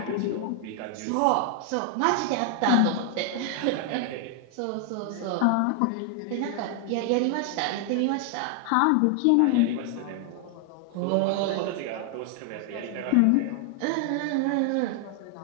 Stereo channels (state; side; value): different; both; correlation 0.00